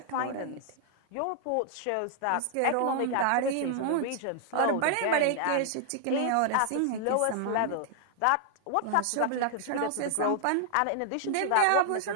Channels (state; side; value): different; both; correlation -0.01